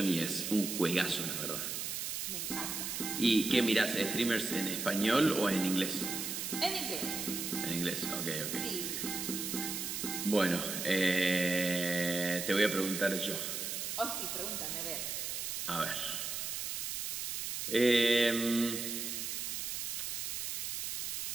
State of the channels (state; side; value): noise; right; hiss, 3 dB below the sound